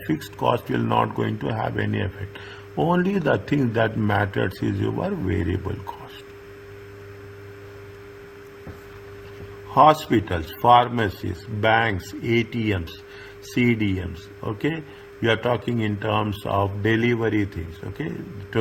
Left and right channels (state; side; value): identical; both; correlation 1.00